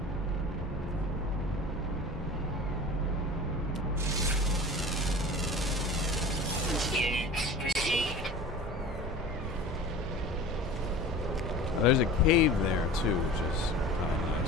Units received. There's a cave there too, which is kind of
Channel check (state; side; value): normal; both; correlation 0.38